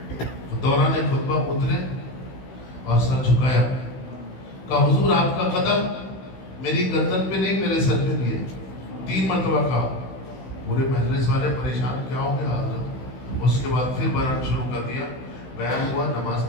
دوران خطبہ اترے اور سر جھکایا، کہا حضور آپ کا قدم میری گردن پہ نہیں میرے سر پہ بھی ہے. 3 مرتبہ کہا. پورے مجلس والے پریشان، کیا ہو گیا حضرت؟ اس کے بعد پھر بیان شروع کر دیا. بیان ہوا، نماز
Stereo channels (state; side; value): late; right; 16 ms